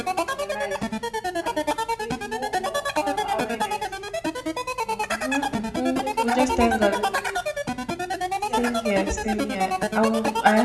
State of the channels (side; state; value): both; identical; correlation 1.00